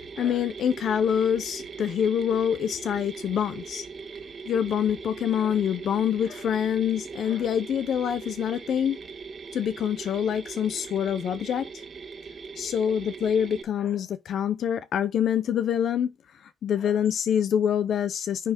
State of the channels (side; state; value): right; quieter; 7.8 dB